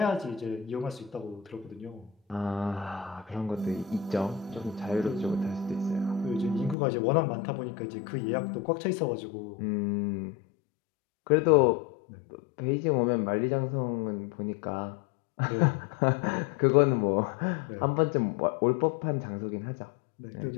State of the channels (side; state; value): right; drops out; at 6.8 s